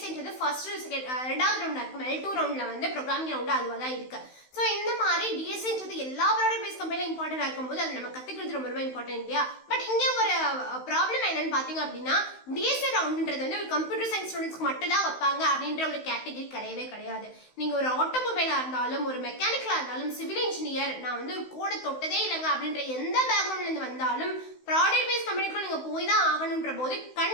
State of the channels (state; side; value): late; right; 16 ms